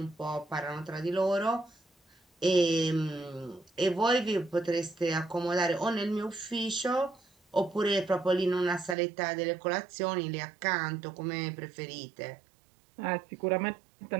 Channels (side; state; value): left; drops out; at 9.0 s